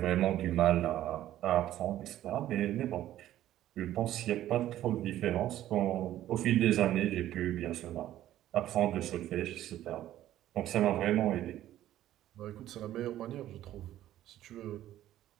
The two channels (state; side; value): quieter; left; 13.1 dB